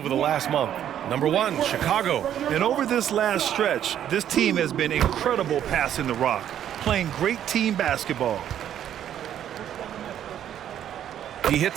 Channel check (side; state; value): left; quieter; 10.4 dB